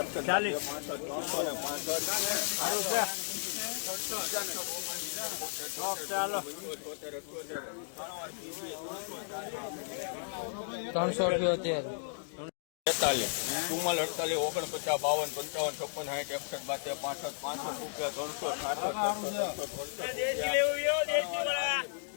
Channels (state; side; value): silent; right; digital silence